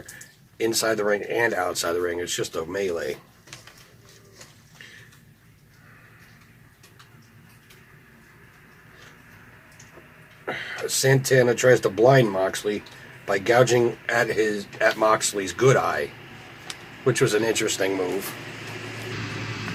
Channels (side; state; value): both; identical; correlation 1.00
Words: inside the ring and outside the ring. It's just a melee. Santana tries to blind Moxley by gouging at Moxley's good eye, which was an interesting move.